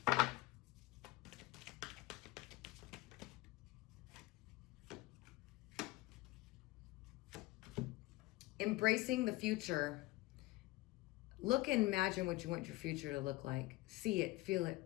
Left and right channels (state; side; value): quieter; right; 19.9 dB